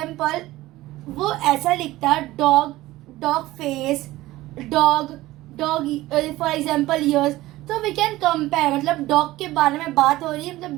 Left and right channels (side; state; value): left; quieter; 17.3 dB